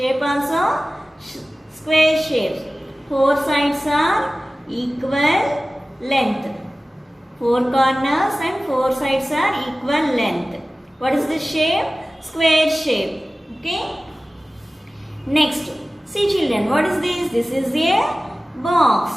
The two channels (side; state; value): both; normal; correlation 0.97